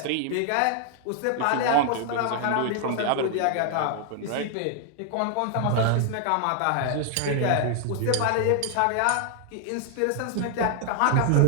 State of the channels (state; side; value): different; both; correlation 0.00